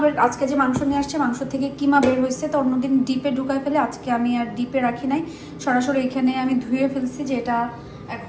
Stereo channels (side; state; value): both; identical; correlation 1.00